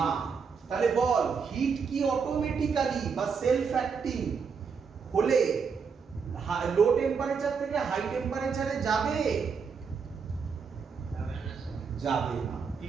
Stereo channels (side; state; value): left; quieter; 5.8 dB